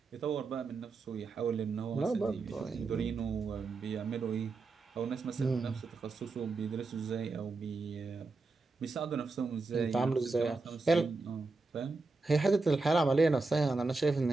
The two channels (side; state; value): left; quieter; 3.7 dB